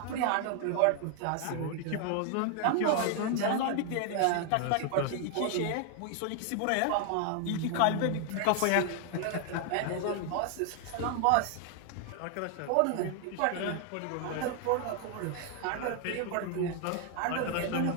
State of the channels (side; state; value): both; different; correlation 0.00